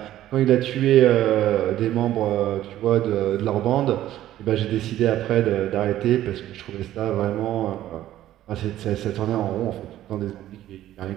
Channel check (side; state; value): left; quieter; 13.3 dB